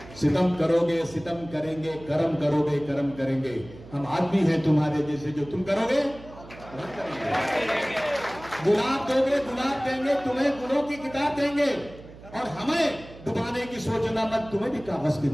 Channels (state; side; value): noise; right; hum, 18 dB below the sound